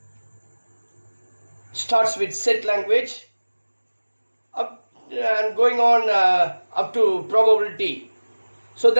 Starts with set language up and going on up to probability. So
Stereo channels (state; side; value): inverted; both; correlation -1.00